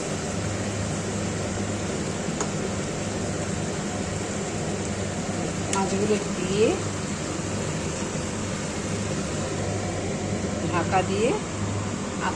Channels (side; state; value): both; identical; correlation 1.00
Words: মাছগুলো দিয়ে ঢাকা দিয়ে আঁচ